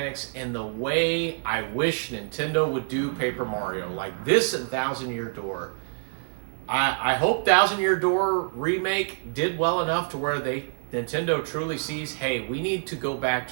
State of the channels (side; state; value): left; silent; digital silence